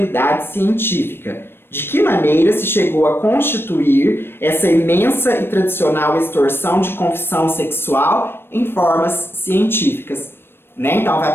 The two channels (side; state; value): right; late; 0.11 ms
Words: científica. De que maneira se chegou a constituir essa imensa e tradicional extorsão de confissão sexual em formas científicas, né? Então vai